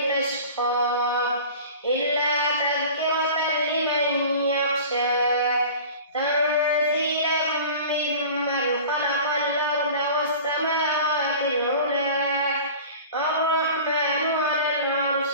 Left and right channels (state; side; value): inverted; both; correlation -0.40